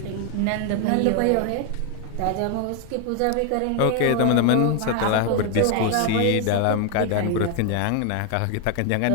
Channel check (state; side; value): different; both; correlation 0.01